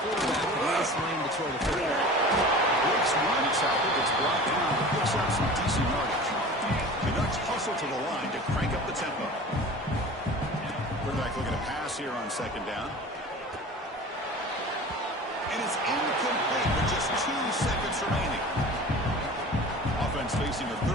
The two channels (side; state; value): both; normal; correlation 0.38